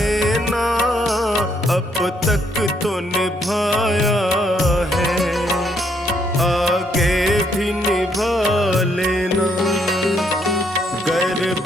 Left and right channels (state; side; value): normal; both; correlation 0.71